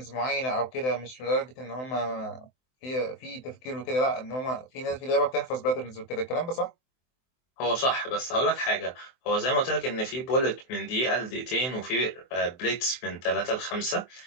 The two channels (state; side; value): late; right; 23 ms